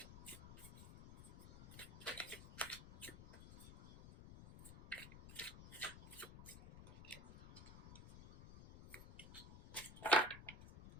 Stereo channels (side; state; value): left; noise; rumble, 14 dB below the sound